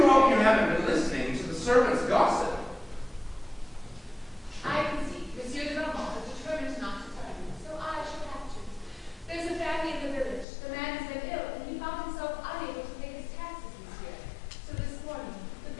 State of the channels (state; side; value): drops out; right; at 10.5 s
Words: hope you haven't been listening to the servants' gossip. I can see Monsieur de Beaumont is determined not to tell you, so I shall have to. There's a family in the village. The man has been ill, and he found himself unable to pay his taxes this year. So this morning, the